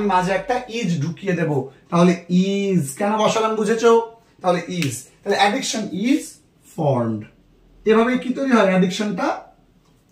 মাঝে একটা ইজ ঢুকিয়ে দেব, তাহলে ইজ কেন বসালাম বুঝেছো, তাহলে ইজ, তাহলে অ্যাডিকশন ইজ ফর্মড। এভাবেই কি তৈরি হয়, অ্যাডিকশনটা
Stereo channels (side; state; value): both; identical; correlation 1.00